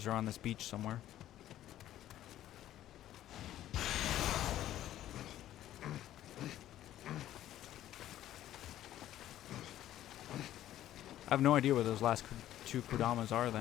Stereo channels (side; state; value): right; quieter; 12.9 dB